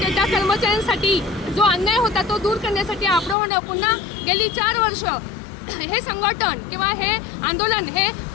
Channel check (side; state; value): right; drops out; at 3.4 s